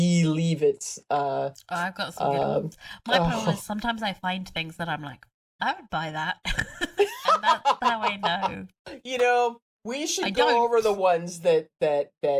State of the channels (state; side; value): identical; both; correlation 1.00